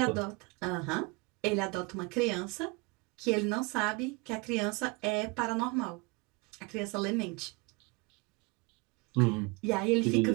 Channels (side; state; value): left; quieter; 27.2 dB